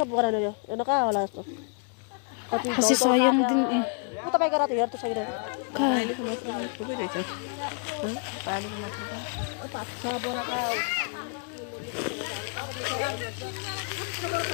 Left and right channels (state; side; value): quieter; right; 39.2 dB